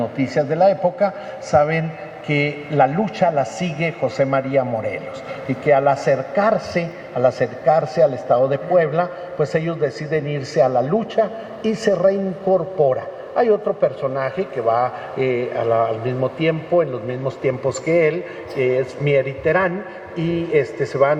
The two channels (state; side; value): identical; both; correlation 1.00